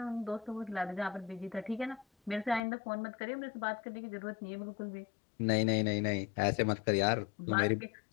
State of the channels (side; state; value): right; drops out; at 2.6 s